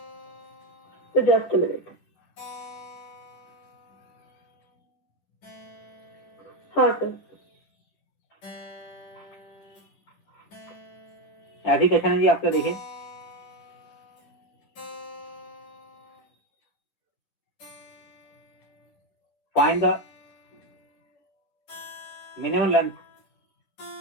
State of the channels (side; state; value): right; late; 10 ms